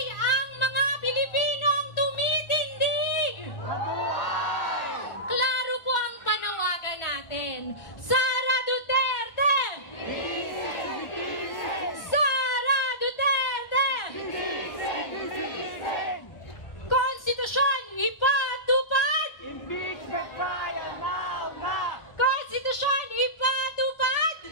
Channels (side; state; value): right; late; 1.4 ms